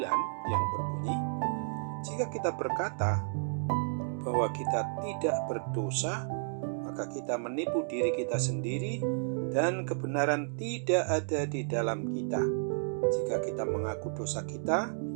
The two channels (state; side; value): silent; left; digital silence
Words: yang berbunyi, jika kita berkata bahwa kita tidak berdosa, maka kita menipu diri kita sendiri dan kebenaran tidak ada di dalam kita. Jika kita mengaku dosa kita,